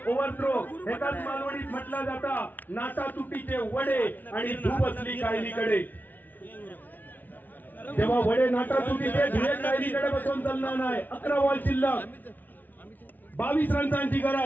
ओव्हरथ्रो एकाच मालवणीत म्हटला जाता नाटा तुटीचे वडे आणि धूप असली कायलीकडे। जेव्हा वडे नाटा तुटीचे धुळे कायलीकडे बसून चालणार नाही। 11 बॉल शिल्लक, 22 रन्सांची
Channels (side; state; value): right; late; 0.083 ms